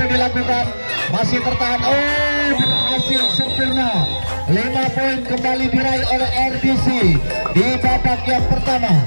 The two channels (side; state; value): both; inverted; correlation -1.00